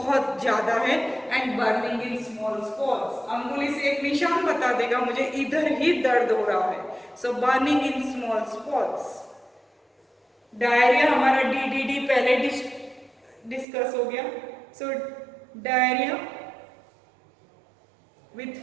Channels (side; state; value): left; drops out; at 13.7 s